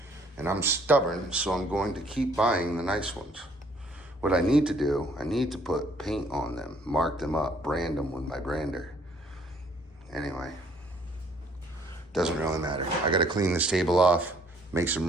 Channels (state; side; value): normal; both; correlation 0.62